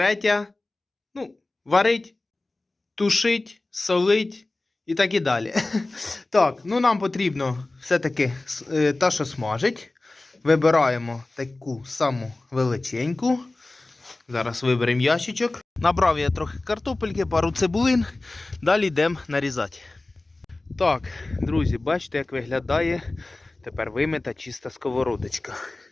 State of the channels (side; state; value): right; quieter; 3.0 dB